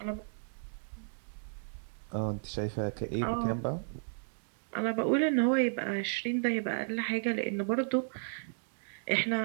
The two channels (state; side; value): silent; left; digital silence